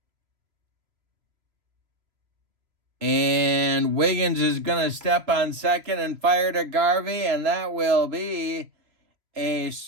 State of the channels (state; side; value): late; left; 3.0 ms